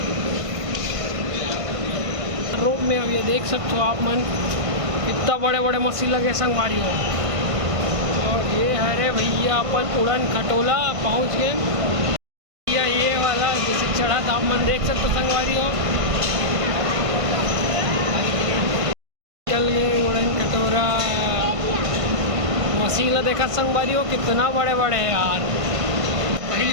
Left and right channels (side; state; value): left; late; 1.5 ms